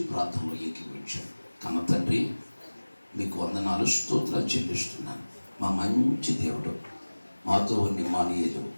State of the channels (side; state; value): both; inverted; correlation -1.00